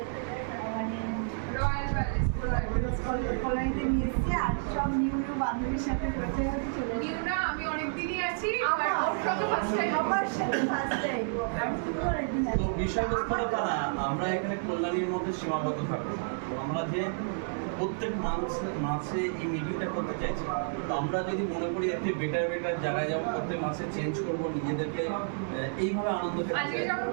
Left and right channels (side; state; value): left; silent; 58 dB below the other